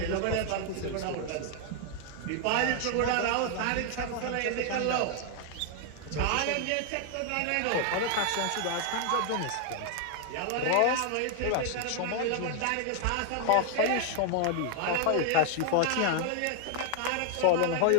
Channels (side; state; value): both; different; correlation 0.00